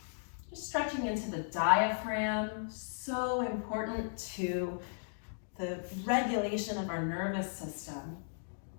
Just stretching into the diaphragm, so important to the regulation of our nervous system.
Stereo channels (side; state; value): right; silent; digital silence